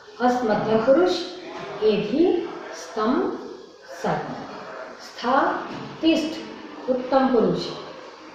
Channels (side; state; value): both; identical; correlation 1.00